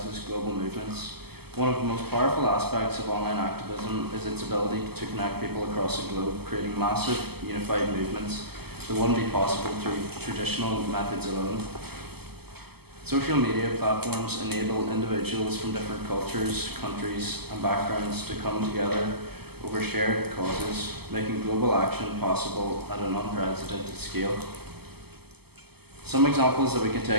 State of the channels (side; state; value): left; late; 0.96 ms